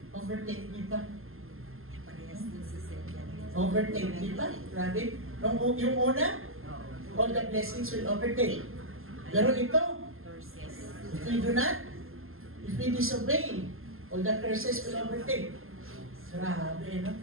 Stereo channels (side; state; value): left; late; 0.61 ms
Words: Overtake thee ba? Overtake thee ba? Grabe. Yung una, all the blessings will overtake. Pero ito, if we do not, if we disobey, all the curses will overtake. Grabe, no?